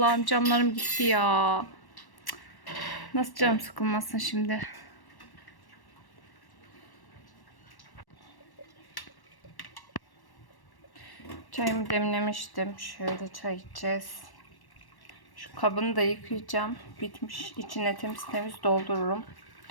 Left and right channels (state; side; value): late; right; 1.1 ms